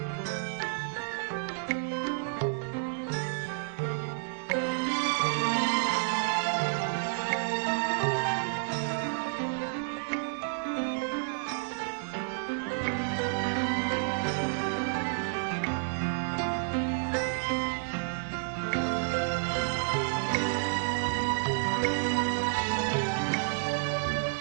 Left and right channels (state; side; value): silent; left; digital silence